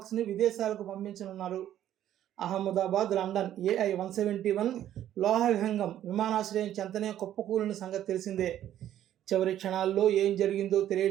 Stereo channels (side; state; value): left; quieter; 11.7 dB